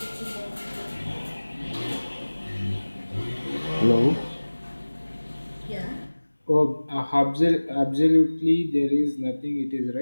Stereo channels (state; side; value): inverted; both; correlation -1.00